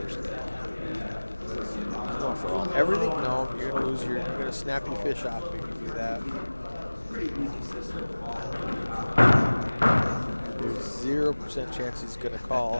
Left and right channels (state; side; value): inverted; both; correlation -1.00